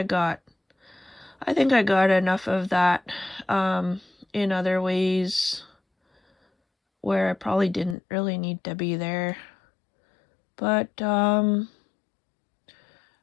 got enough of that in other ways where I probably didn't really need to be there. But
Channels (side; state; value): right; drops out; at 8.0 s